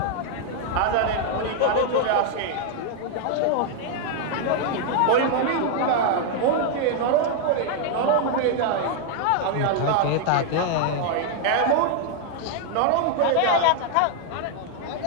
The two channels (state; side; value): different; both; correlation 0.00